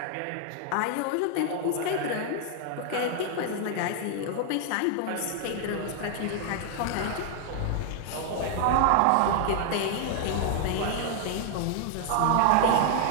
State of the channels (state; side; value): different; both; correlation 0.00